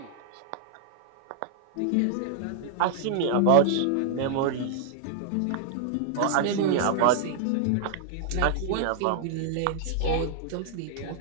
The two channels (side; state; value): both; different; correlation -0.01